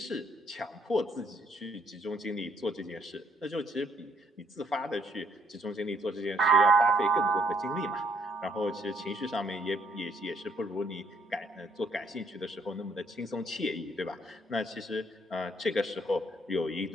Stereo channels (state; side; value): normal; both; correlation 0.68